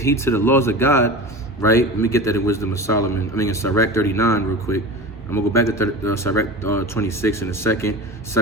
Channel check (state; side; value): normal; both; correlation 0.31